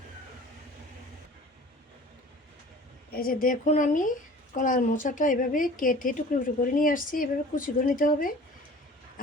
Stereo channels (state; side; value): normal; both; correlation 0.45